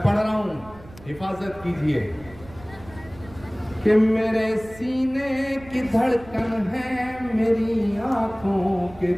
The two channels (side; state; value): right; noise; rumble, 20 dB below the sound